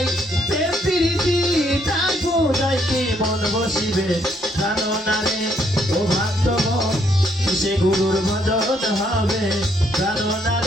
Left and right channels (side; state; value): both; normal; correlation 0.71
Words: প্রেম প্রীতি, তার পূজায় কি মন বসিবে, জানো না রে ও ভক্তগণ কিসে গুরুর ভজন হবে, জানো না